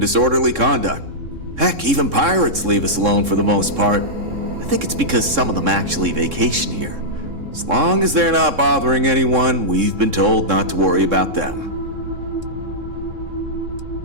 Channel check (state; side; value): late; left; 3.7 ms